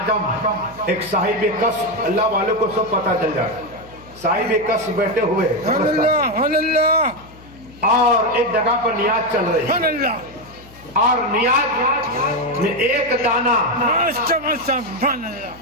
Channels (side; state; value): left; noise; hum, 22 dB below the sound